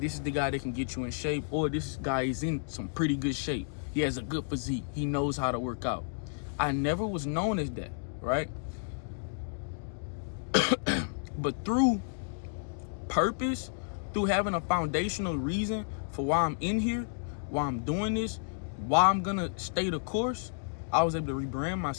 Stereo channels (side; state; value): right; silent; digital silence